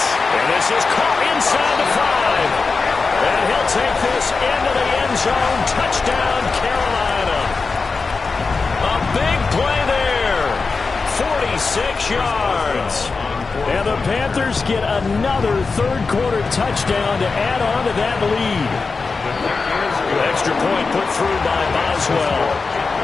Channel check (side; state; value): right; quieter; 4.4 dB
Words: And this is caught inside the 5. And he'll take this into the end zone. Touchdown, Carolina. A big play there. 46 yards. And the Panthers get another third-quarter touchdown to add on to that lead. Extra point put through by Boswell.